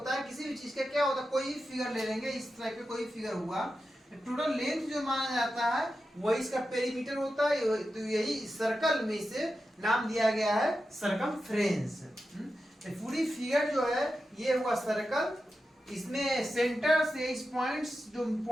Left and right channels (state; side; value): normal; both; correlation 0.91